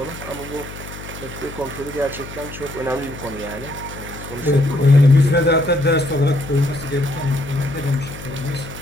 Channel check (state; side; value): noise; left; hum, 13 dB below the sound